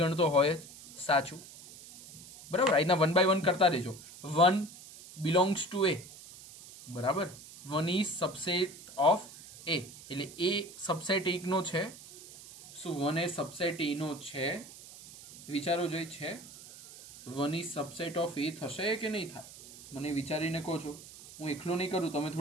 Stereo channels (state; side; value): noise; right; hiss, 17 dB below the sound